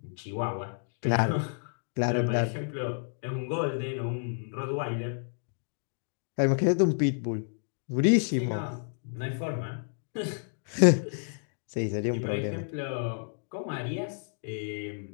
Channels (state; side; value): silent; right; digital silence